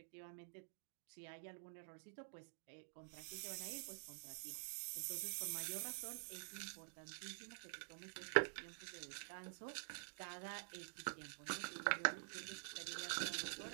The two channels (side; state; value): left; silent; digital silence